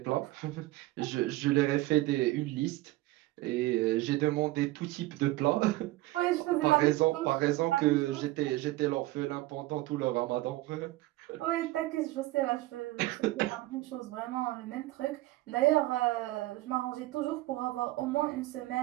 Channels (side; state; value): left; quieter; 18.3 dB